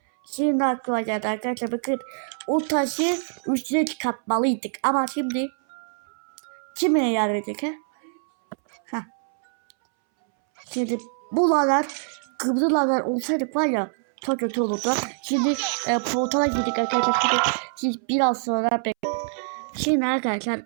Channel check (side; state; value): left; silent; 62 dB below the other